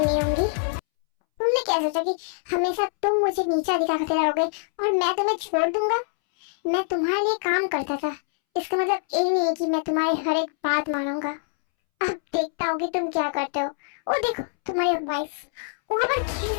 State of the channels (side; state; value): right; silent; 62 dB below the other